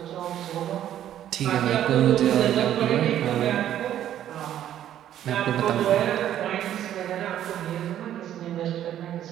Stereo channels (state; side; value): quieter; left; 11.3 dB